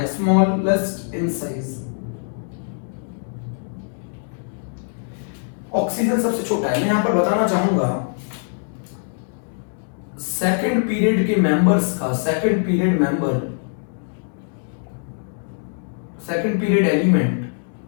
स्मॉलेस्ट इन साइज। ऑक्सीजन सबसे छोटा है। मैं यहां पर बताना चाहूंगा सेकंड पीरियड के मेंबर्स का, second period element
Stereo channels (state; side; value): silent; right; digital silence